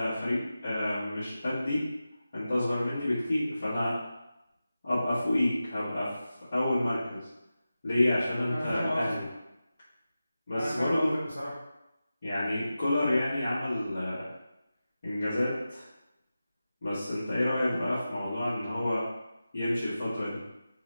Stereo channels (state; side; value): inverted; both; correlation -0.94